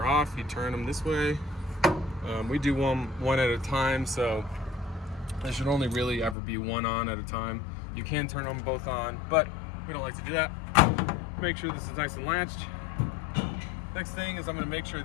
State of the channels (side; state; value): right; drops out; at 6.4 s